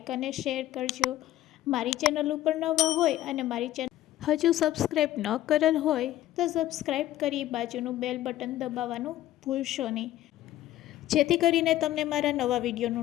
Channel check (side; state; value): right; quieter; 14.1 dB